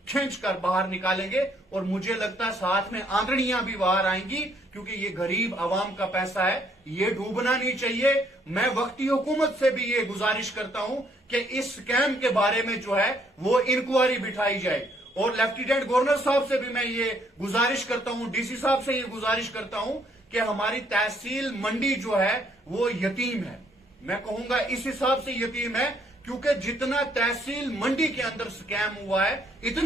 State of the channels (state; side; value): normal; both; correlation 0.67